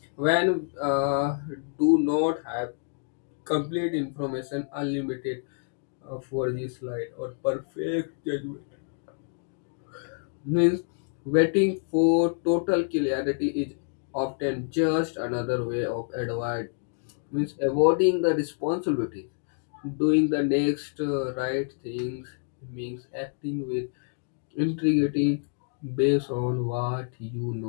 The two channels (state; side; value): silent; right; 60 dB below the other